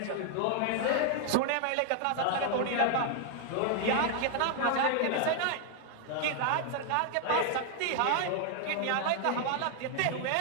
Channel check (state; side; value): different; both; correlation 0.00